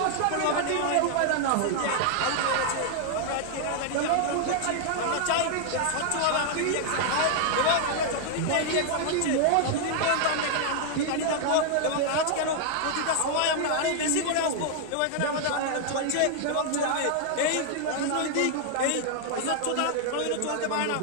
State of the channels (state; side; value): different; both; correlation 0.00